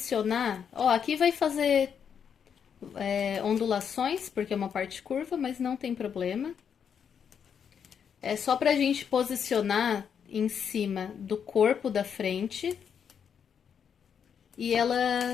ó, aqui vai fazer ondulações, porque é uma parte curva, mas não tem problema. É só pra gente posicionar em cima do corpo da frente e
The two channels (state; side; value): quieter; right; 7.5 dB